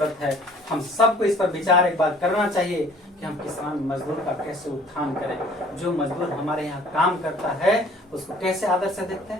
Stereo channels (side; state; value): both; normal; correlation 0.54